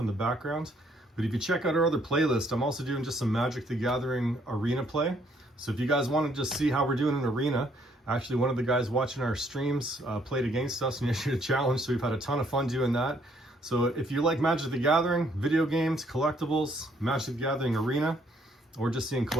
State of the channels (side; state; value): both; normal; correlation 0.67